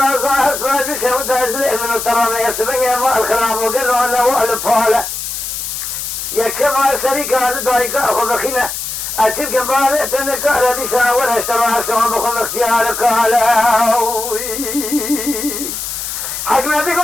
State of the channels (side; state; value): left; noise; hiss, 5 dB below the sound